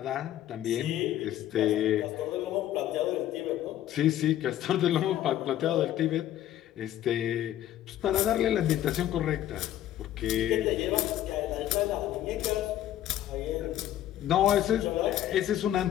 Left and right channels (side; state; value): right; quieter; 12.3 dB